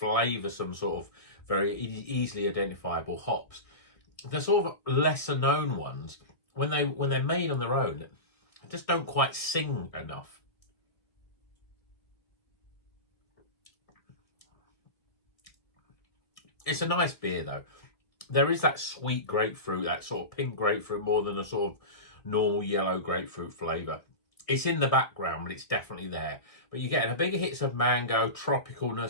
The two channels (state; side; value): late; right; 1.6 ms